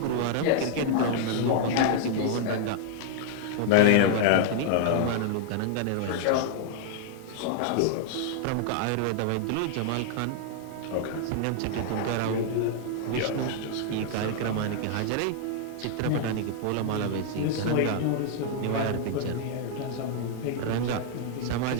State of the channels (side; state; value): both; different; correlation 0.00